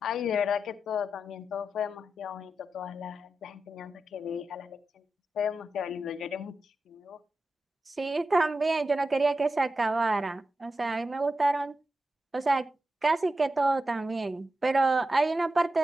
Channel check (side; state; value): both; normal; correlation 0.90